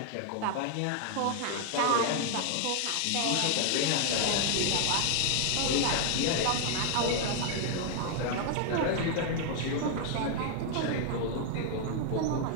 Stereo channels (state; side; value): different; both; correlation 0.00